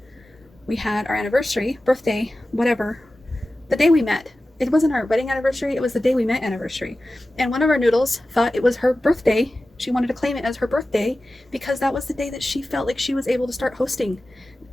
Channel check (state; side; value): normal; both; correlation 0.95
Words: We had our anniversary, birthday, whatever, the day we met. It wasn't our wedding anniversary, it was the day we met anniversary. And one of our noodles thought it was her birthday. She wanted to claim it as her birthday because that was the day that she felt like she was able to start hosting